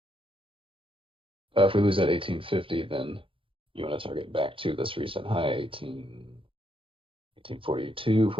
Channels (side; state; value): left; late; 0.25 ms